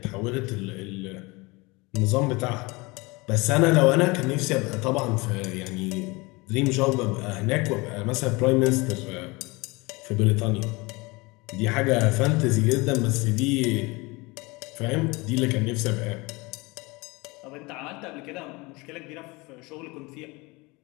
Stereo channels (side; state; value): right; quieter; 24.8 dB